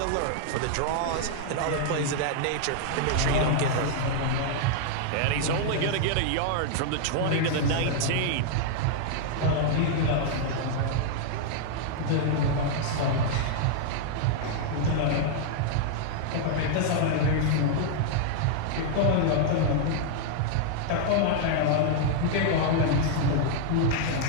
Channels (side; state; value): both; different; correlation 0.00